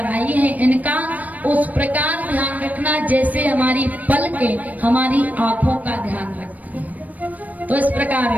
आई हैं, इनका उस प्रकार ध्यान रखना जैसे हमारी पलकें हमारी आंखों का ध्यान रखती हैं। तो इस प्रकार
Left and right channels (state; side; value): late; left; 0.076 ms